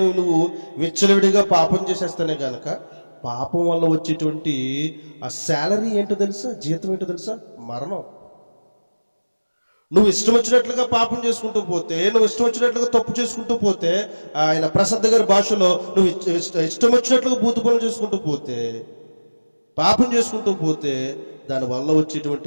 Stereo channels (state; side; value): inverted; both; correlation -1.00